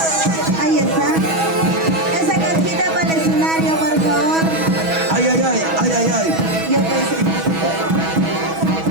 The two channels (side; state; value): left; late; 6.2 ms